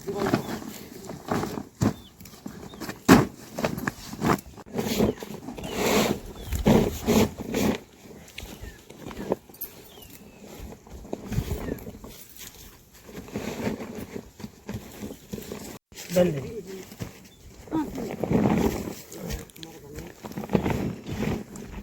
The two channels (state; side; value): identical; both; correlation 1.00